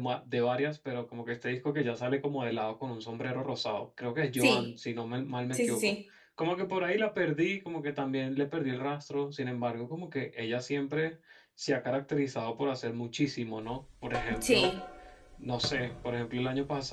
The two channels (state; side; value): identical; both; correlation 1.00